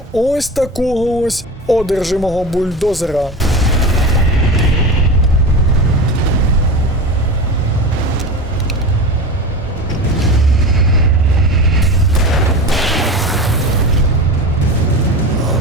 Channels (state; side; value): normal; both; correlation 0.28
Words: ось такого ось одержимого бульдозера.